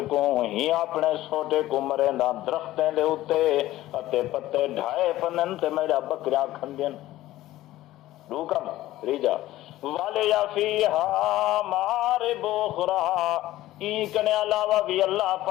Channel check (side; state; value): right; quieter; 15.5 dB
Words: کو ہی اپنے سوٹے کو مریندا درختیں دے اوتے اتے پتے ڈھائے پنن تے میرا بکریاں کھندین. دو کم ریجا والے یا فیہا مارب اخرى ای کنے علاوہ بھی اللہ